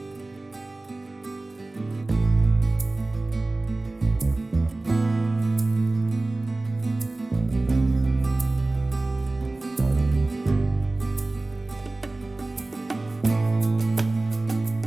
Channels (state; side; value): quieter; left; 3.0 dB